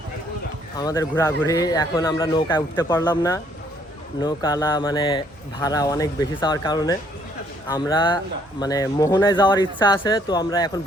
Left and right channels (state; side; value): normal; both; correlation 0.66